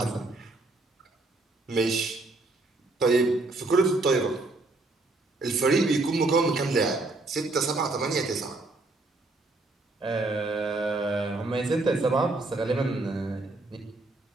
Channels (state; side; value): quieter; left; 3.1 dB